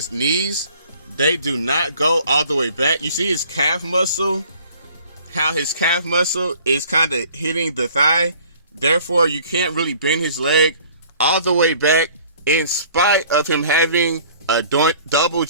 knees, they do not go all the way back. You see his calf muscle, how his calf muscle is kind of hitting the thigh. Therefore, you can't really bend his leg all the way back in spite of him having a double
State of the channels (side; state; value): both; inverted; correlation -0.53